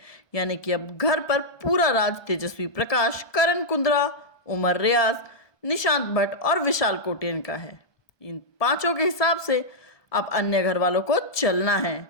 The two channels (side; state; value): right; late; 1.2 ms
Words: यानी कि अब घर पर पूरा राज तेजस्वी प्रकाश, करण कुंद्रा, उमर रियाज, निशांत भट्ट और विशाल कोटेन का है। इन पांचों के हिसाब से अब अन्य घर वालों को चलना